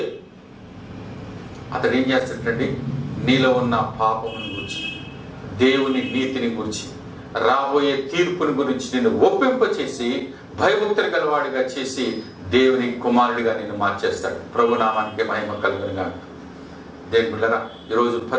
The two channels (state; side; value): identical; both; correlation 1.00